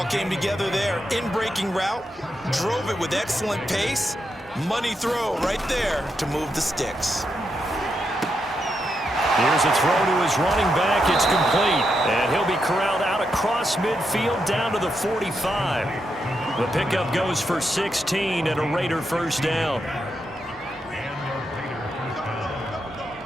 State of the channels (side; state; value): both; normal; correlation 0.83